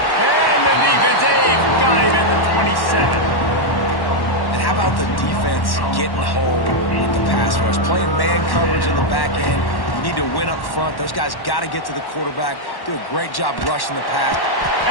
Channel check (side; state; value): right; late; 1.1 ms